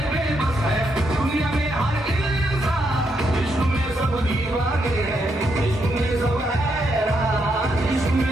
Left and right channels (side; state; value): both; normal; correlation 0.79